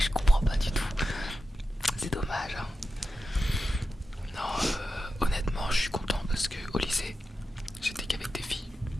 comprends pas du tout. C'est dommage, hein. Non, honnêtement, je suis content parce que au lycée, j'étais qu'avec des filles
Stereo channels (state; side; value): normal; both; correlation 0.91